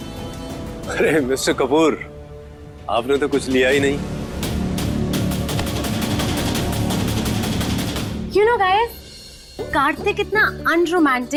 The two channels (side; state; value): both; identical; correlation 1.00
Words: अरे मिस्टर कपूर, आपने तो कुछ लिया ही नहीं। You know guys, कार्तिक इतना